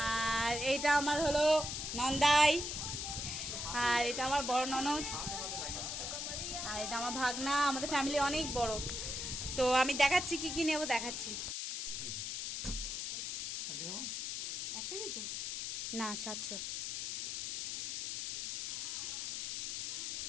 আর এইটা আমার হলো নন্দাই, আর এটা আমার বড় ননদ, আর এটা আমার ভাগনা। আমাদের ফ্যামিলি অনেক বড়। তো আমি দেখাচ্ছি কি কি নেবো, দেখাচ্ছি। না 700।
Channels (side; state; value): left; noise; hiss, 3 dB below the sound